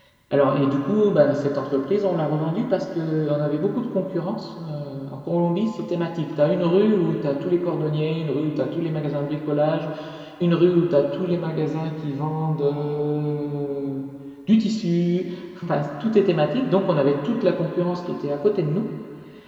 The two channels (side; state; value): both; identical; correlation 1.00